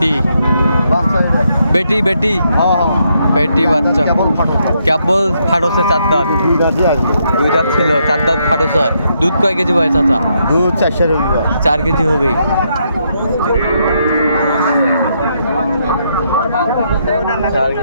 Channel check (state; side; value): inverted; both; correlation -0.77